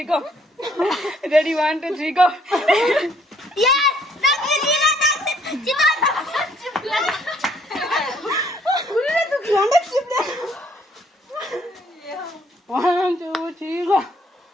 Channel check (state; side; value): normal; both; correlation 0.64